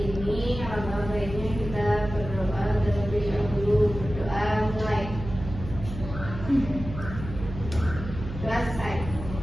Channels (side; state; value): right; noise; hum, 9 dB below the sound